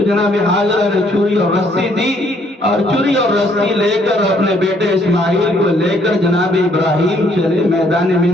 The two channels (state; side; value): normal; both; correlation 0.66